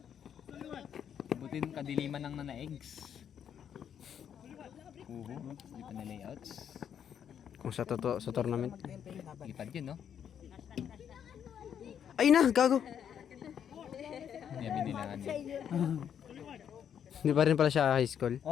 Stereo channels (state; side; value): quieter; right; 8.7 dB